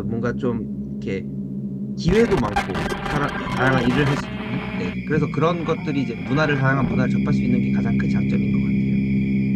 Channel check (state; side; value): identical; both; correlation 1.00